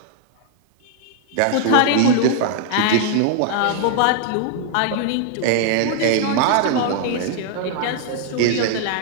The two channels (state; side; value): different; both; correlation 0.00